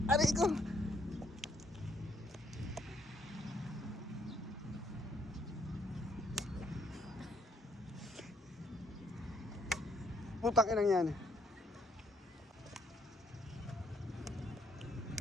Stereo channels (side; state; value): both; normal; correlation 0.69